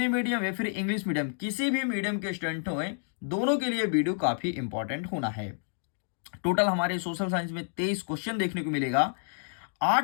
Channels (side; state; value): right; silent; digital silence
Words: मीडियम या फिर इंग्लिश मीडियम किसी भी मीडियम के स्टूडेंट हो, दोनों के लिए वीडियो काफी इंपॉर्टेंट होना है। टोटल हमारे सोशल साइंस में 23 क्वेश्चन देखने को मिलेगा।